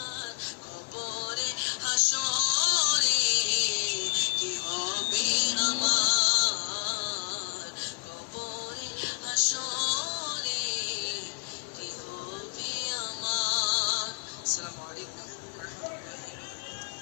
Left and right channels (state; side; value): quieter; right; 39.0 dB